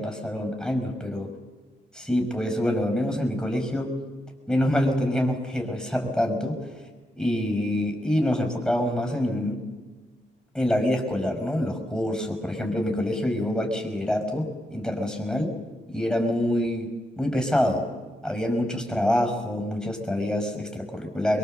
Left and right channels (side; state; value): both; normal; correlation 0.84